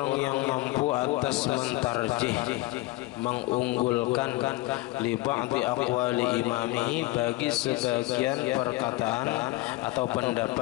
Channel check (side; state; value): right; quieter; 19.8 dB